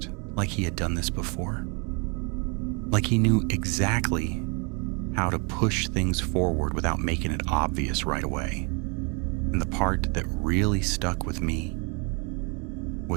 like he had done this before. Like he knew exactly how to push things forward without making it obvious right away. And the part that really stuck with me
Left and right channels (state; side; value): quieter; left; 33.7 dB